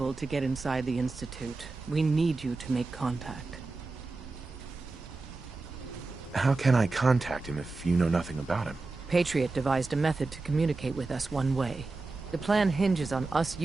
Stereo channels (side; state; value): left; quieter; 3.5 dB